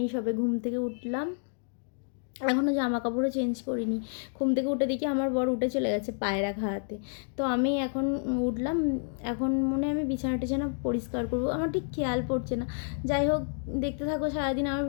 সবে ঘুম থেকে উঠলাম। এখনও জামা কাপড়ও চেঞ্জ করিনি। ঘুম থেকে উঠে দেখি আমার বর উঠে চলে গেছে পায়রা খাওয়াতে। তো আমি এখন উঠলাম। এখন মনে আমি বিছানা টিছানা পরিষ্কার করবো, আমার ঠিক খেয়াল পড়ছে না। যাই হোক, দেখতে থাকো সারাদিন আমার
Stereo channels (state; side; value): silent; right; 58 dB below the other